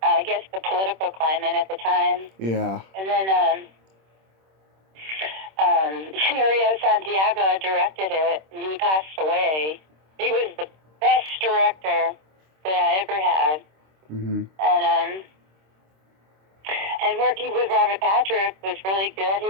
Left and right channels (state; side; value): late; left; 26 ms